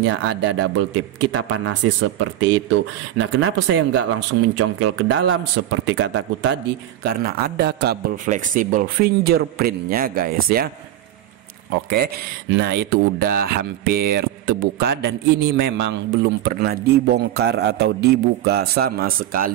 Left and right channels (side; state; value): left; quieter; 12.6 dB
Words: ada double tip, kita panasi seperti itu. Nah kenapa saya nggak langsung mencongkel ke dalam seperti kataku tadi? Karena ada kabel fleksibel fingerprintnya guys ya. Oke, nah itu udah hampir terbuka dan ini memang belum pernah dibongkar atau dibuka sama